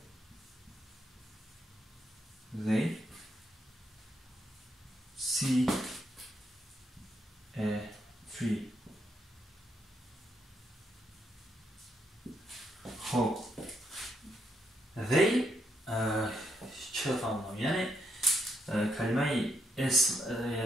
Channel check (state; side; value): normal; both; correlation 0.77